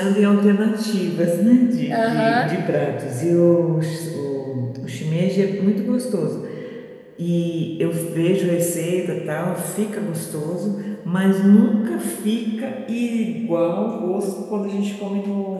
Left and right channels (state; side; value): identical; both; correlation 1.00